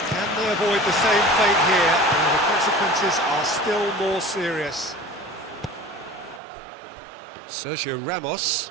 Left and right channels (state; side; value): drops out; left; at 6.4 s